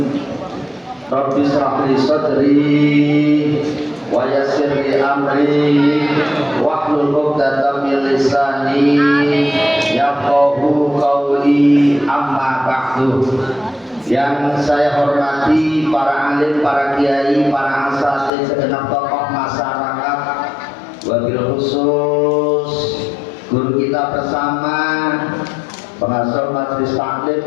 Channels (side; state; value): right; drops out; at 18.3 s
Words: Rabbi shrah li sadri wa yassir li amri wahlul 'uqdatam min lisani yafqahu qawli, amma ba'du. Yang saya hormati para alim, para kiai, para asatidz, segenap tokoh masyarakat, wabil khusus guru kita bersama, pengasuh majelis